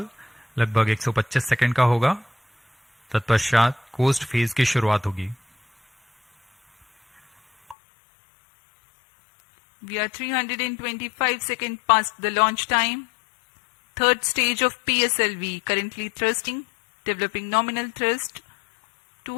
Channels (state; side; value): drops out; right; at 7.8 s